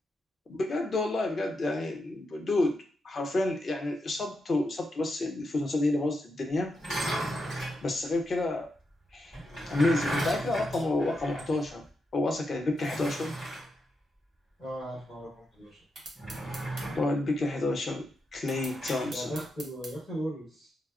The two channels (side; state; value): both; normal; correlation 0.85